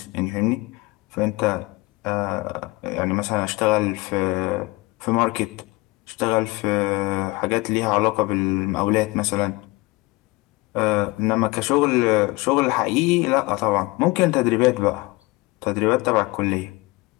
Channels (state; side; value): quieter; right; 23.0 dB